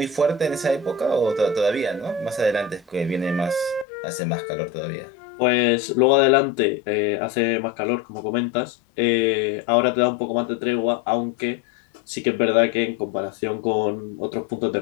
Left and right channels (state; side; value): drops out; right; at 3.9 s